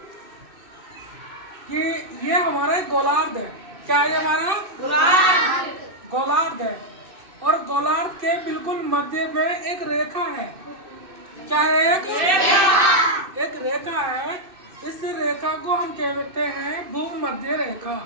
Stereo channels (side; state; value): left; late; 2.6 ms